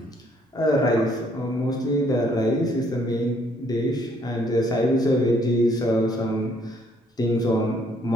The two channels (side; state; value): both; normal; correlation 0.66